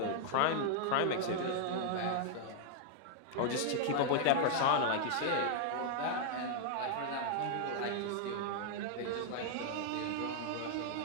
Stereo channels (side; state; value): both; different; correlation -0.01